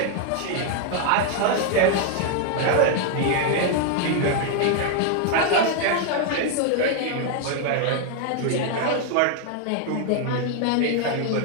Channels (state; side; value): different; both; correlation 0.00